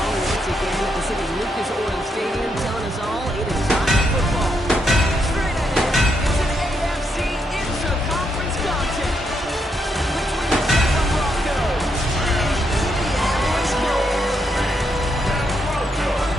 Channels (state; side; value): normal; both; correlation 0.79